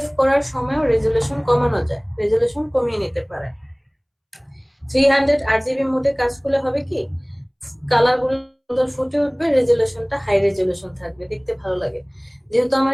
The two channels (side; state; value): both; identical; correlation 1.00